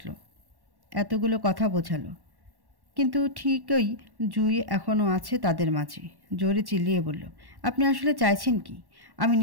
এতগুলো কথা বোঝালো। কিন্তু ঠিকই জুই এখনও আছে তাদের মাঝে। জোরে চিল্লিয়ে বলল, আপনি আসলে চাইছেন কি? আমি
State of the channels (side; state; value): left; late; 1.1 ms